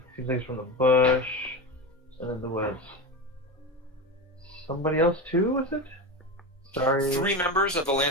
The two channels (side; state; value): both; normal; correlation 0.21